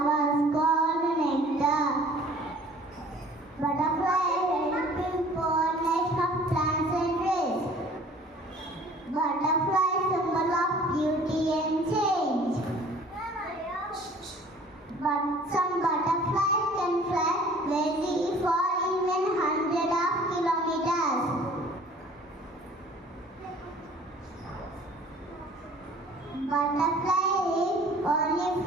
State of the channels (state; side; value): normal; both; correlation 0.51